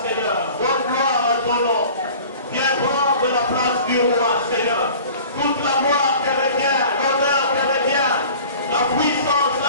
Seigneur. Donne gloire à ton nom. Viens prendre la place du roi, Seigneur. Toute la gloire te revient, l'honneur te revient, la puissance,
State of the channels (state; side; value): inverted; both; correlation -0.44